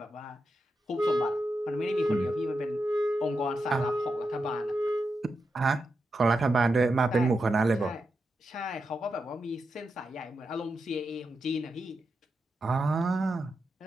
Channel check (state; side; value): normal; both; correlation 0.87